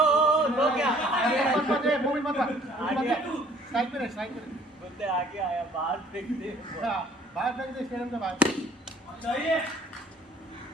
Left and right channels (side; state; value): both; normal; correlation 0.56